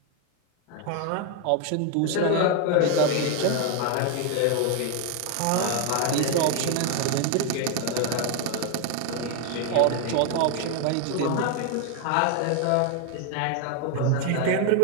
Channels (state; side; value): different; both; correlation 0.01